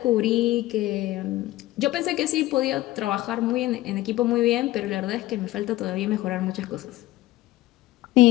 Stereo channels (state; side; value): quieter; right; 16.7 dB